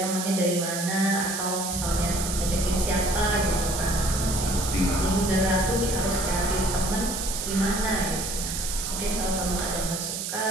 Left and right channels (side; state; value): right; noise; hiss, 4 dB below the sound